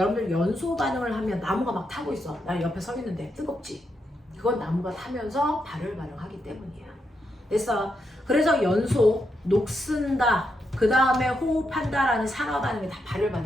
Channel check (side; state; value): both; normal; correlation 0.82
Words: 연소 반응을 하면 나무가 막 타고 있어. 나 옆에 서 있는데 뜨겁지? 그건 나무가 타면서 발열 반응하기 때문이야. 됐어? 그래서 연소, 녹슨다, 그 다음에 호흡한다라는 산화 반응이 다 발열